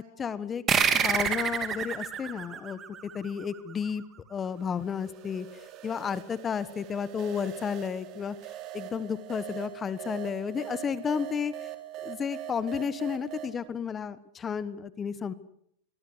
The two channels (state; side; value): normal; both; correlation 0.67